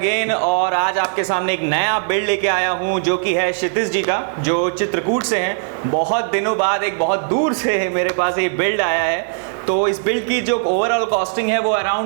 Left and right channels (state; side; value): silent; left; 67 dB below the other